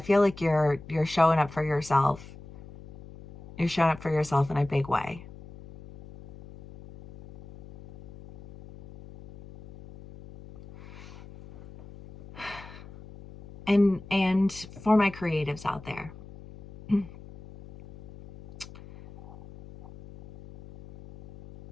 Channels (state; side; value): noise; left; hum, 18 dB below the sound